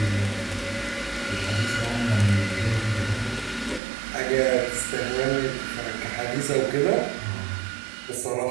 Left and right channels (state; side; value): drops out; left; at 3.8 s